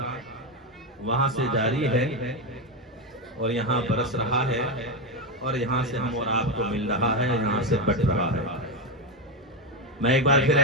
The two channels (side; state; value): both; normal; correlation 0.10